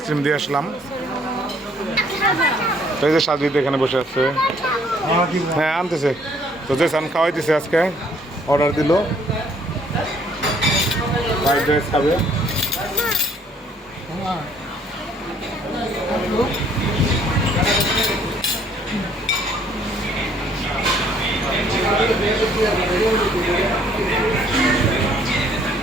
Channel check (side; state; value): both; normal; correlation 0.62